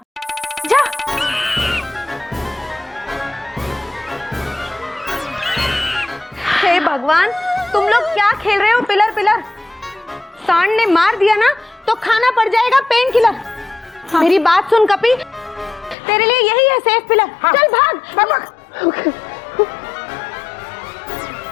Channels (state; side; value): drops out; right; at 16.0 s